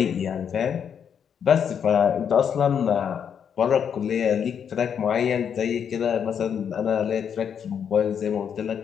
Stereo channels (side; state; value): right; quieter; 7.8 dB